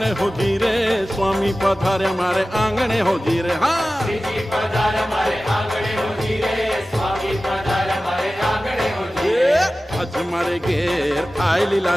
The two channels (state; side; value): normal; both; correlation 0.96